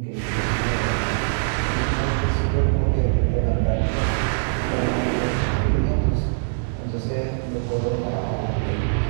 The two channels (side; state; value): left; silent; digital silence